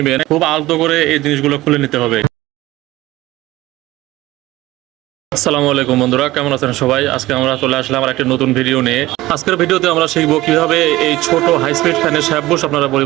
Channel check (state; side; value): quieter; left; 17.6 dB